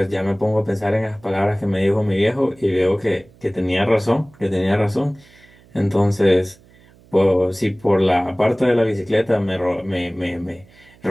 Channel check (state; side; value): noise; right; hum, 28 dB below the sound